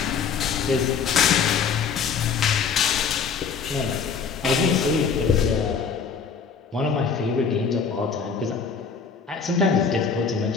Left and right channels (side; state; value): right; quieter; 6.0 dB